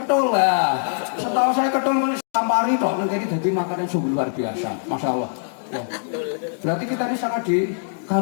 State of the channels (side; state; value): right; silent; digital silence